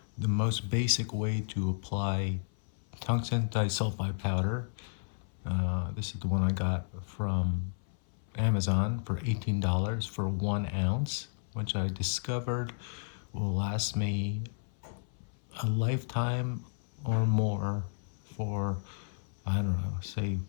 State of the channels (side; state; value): right; silent; 56 dB below the other